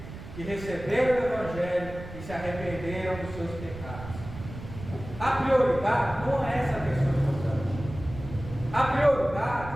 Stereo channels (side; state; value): right; noise; rumble, 12 dB below the sound